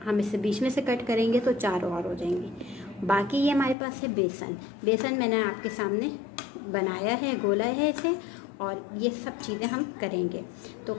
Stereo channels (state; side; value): drops out; right; at 3.8 s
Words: हम इसे बीच में से कट करेंगे तो 4 और हो जाएंगे। बाकी ये हमारे पास है बेसन। बेसन मैंने आपके सामने बनाया है, गोला है इसे, और ये सब चीज़ें हम करेंगे। तो